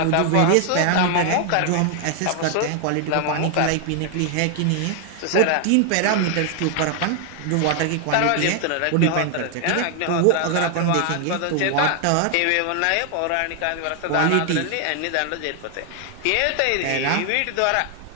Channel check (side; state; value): both; different; correlation 0.00